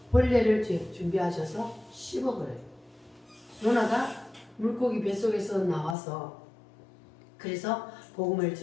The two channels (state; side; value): drops out; right; at 6.0 s